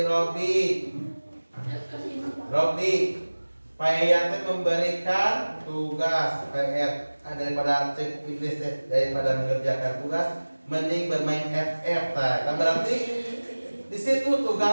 Robi, Payatnya memberikan tugas PR daripada iblis, daripada mengerjakan tugas, mending bermain FF. Nah, berarti di situ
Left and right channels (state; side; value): inverted; both; correlation -1.00